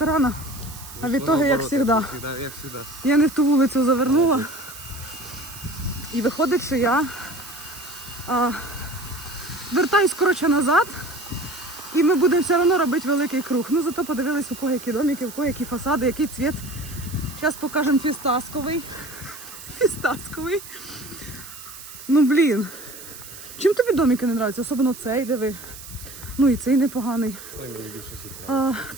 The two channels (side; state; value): right; noise; hiss, 15 dB below the sound